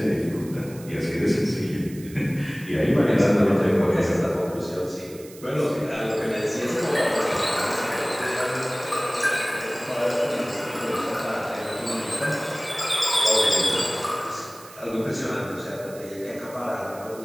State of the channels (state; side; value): noise; right; hiss, 20 dB below the sound